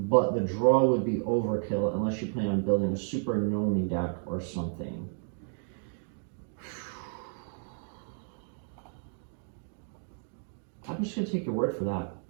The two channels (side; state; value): left; silent; 57 dB below the other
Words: the draw would be overkill unless you plan on building a Super Nomi deck or something. I'm just gonna take your word for that.